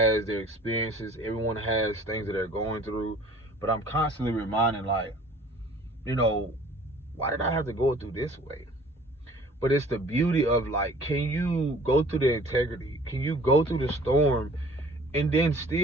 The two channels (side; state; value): both; normal; correlation 0.51